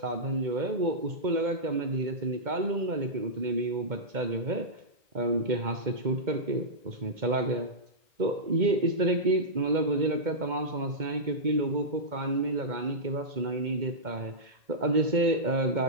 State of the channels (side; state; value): left; late; 2.1 ms